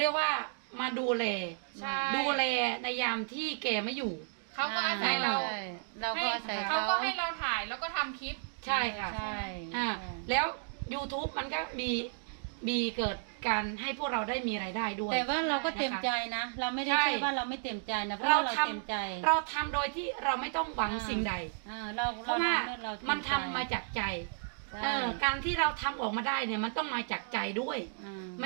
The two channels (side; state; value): left; silent; digital silence